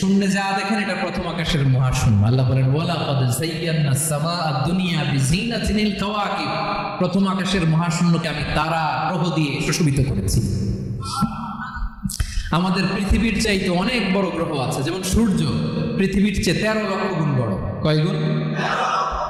যা দেখেন এটা প্রথম আকাশের মহাশূন্য। আল্লাহ বলেন ওয়ালাকাদ যায়্যানাস সামাআদ দুনিয়া বিজিনাতিল কাওয়াকিব। প্রথম আকাশের মহাশূন্যকে আমি তারা গ্রহ দিয়ে সুশোভিত করেছি। আমাদের পৃথিবীর চাইতে অনেক বড় গ্রহ আছে, যেমন সূর্য পৃথিবীর চেয়ে 13 লক্ষ গুণ বড়। কয় গুণ?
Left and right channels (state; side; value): identical; both; correlation 1.00